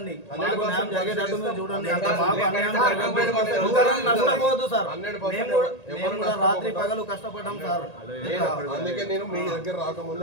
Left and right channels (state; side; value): late; right; 1.9 ms